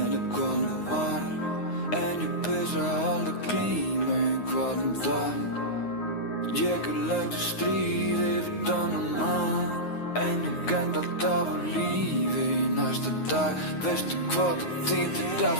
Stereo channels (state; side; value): late; right; 9.5 ms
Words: hvað nú var. En ég pissa alltaf glíma í hvaðan dag. Ég lent í stríði við annan mann, en ég end alltaf á lífi í næsta dag. Veistu hvað það þýðir